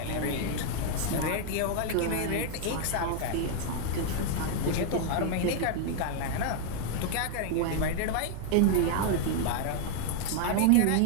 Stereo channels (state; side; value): different; both; correlation 0.00